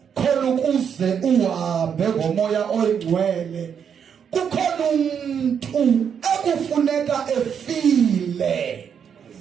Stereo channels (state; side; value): quieter; left; 7.6 dB